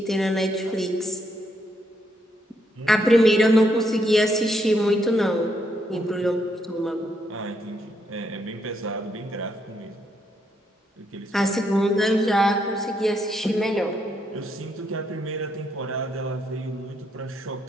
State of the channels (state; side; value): normal; both; correlation 0.76